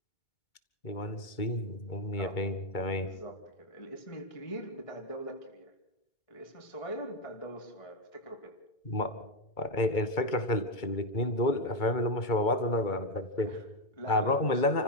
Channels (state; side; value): late; right; 2.2 ms